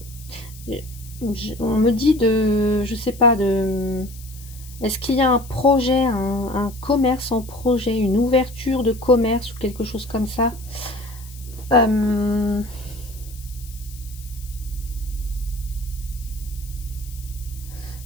on me dit de, je sais pas, de, est-ce qu'il y a un projet, un commerce en projet, une ouverture de commerce ou quelque chose comme ça?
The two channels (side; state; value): left; noise; hiss, 19 dB below the sound